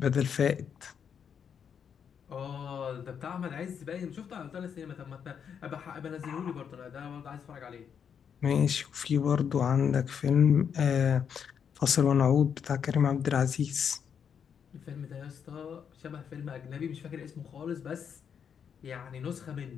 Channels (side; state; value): right; quieter; 7.5 dB